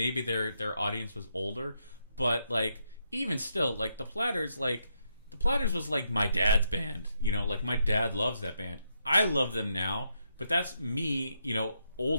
their audience was older. But like, even still, like the Platters was like my dad's band. You know, like my dad loves that band. I love them now, but that's me, you know,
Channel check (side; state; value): both; inverted; correlation -0.79